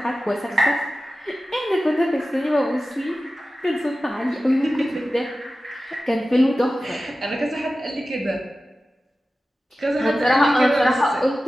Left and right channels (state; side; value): normal; both; correlation 0.94